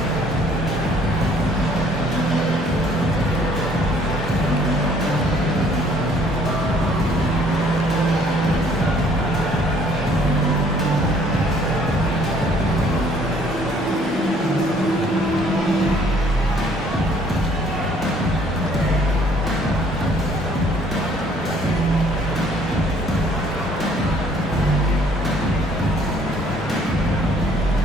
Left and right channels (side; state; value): both; normal; correlation 0.60